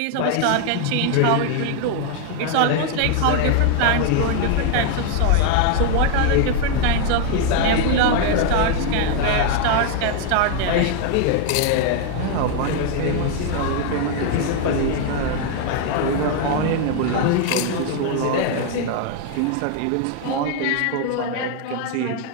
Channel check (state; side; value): different; both; correlation 0.01